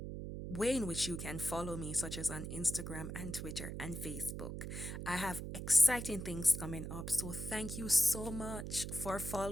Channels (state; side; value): noise; right; hum, 6 dB below the sound